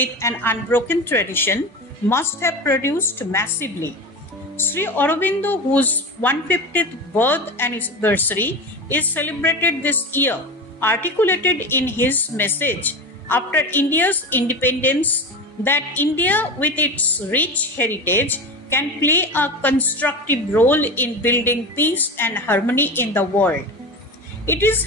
an unbroken tradition must have produced massively. Sri Aurobindo, whose 150th birth anniversary is celebrated this year, articulated in his message after India's independence that India, with its rich heritage, can play a constructive role in building peace and harmony in the world. It is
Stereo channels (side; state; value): both; normal; correlation 0.26